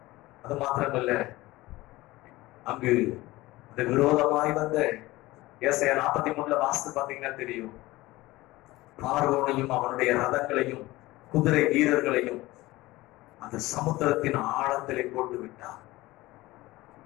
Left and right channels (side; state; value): right; quieter; 19.1 dB